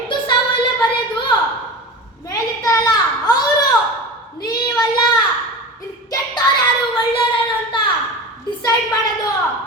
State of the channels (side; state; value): both; normal; correlation 0.30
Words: ಸಾವು ಎಲ್ಲ ಬರೆಯೋದು ಮೇಲಿರ್ತಾರಲ್ಲ ಅವರು, ನೀವಲ್ಲ. ಇಲ್ಲಿ ಕೆಟ್ಟವ್ರು ಯಾರು ಒಳ್ಳೆಯವರು ಅಂತ ಡಿಸೈಡ್ ಮಾಡೋದು